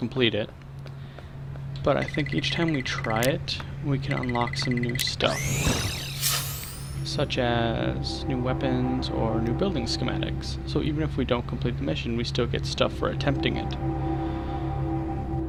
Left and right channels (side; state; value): both; identical; correlation 1.00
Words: it, but I think each time we try it, we can unlock some new stuff, such as new weapons or new building schematics. So even if we don't complete the mission, we still get stuff for attempting it.